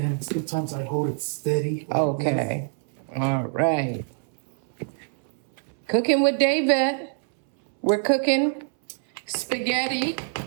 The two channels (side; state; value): left; silent; 62 dB below the other